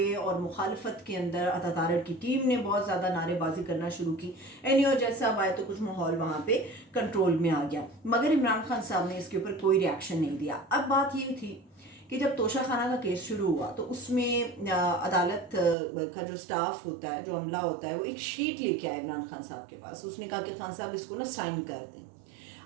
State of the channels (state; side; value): drops out; left; at 15.8 s